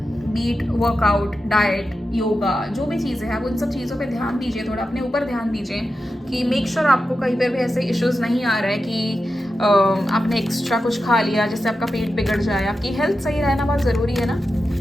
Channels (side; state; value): both; normal; correlation 0.90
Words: बीट, वर्कआउट, डाइट, योगा, जो भी चीज़ें हैं, आप उन सब चीज़ों पे ध्यान दीजिए, थोड़ा अपने ऊपर ध्यान दीजिए कि मेक श्योर आपको कहीं पर भी ऐसे इश्यूज़ नहीं आ रहा है कि आपने एक्स्ट्रा कुछ खा लिया जिससे आपका पेट बिगड़ जाए। आपकी हेल्थ सही रहना बहुत ज़रूरी है ना,